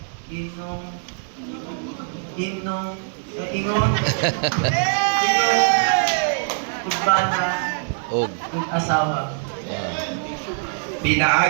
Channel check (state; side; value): silent; left; digital silence